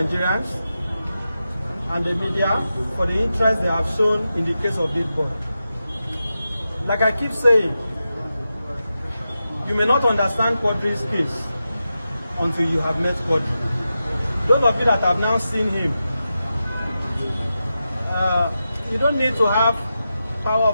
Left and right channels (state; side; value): inverted; both; correlation -0.90